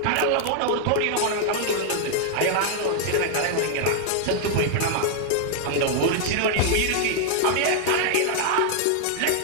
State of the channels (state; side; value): different; both; correlation 0.00